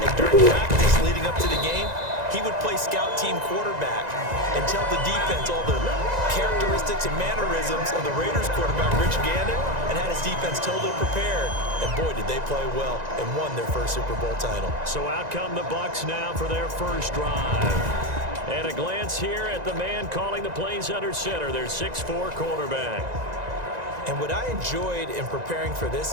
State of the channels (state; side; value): late; left; 1.9 ms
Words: during practice leading up to the game, he would play scout team quarterback and tell the defense all the characteristics and mannerisms of the Raiders quarterback, Rich Gannon, and had his defense totally prepared. And boy, did they play well and won their first Super Bowl title. So out come the Bucs now for their first drive. And a glance here at the man calling the plays under center, their 6'4" quarterback. And what I enjoyed in preparing for this